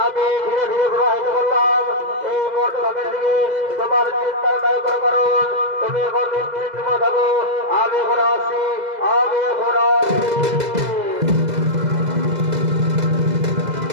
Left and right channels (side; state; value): left; late; 2.0 ms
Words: আমি ধীরে ধীরে প্রবাহিত করলাম এই মর্তধামের দিকে। তোমার চিন্তার নাই কোনো কারণ তুমি এখন নিশ্চিন্ত থাকো, আমি এখন আসি, আমি এখন আসি।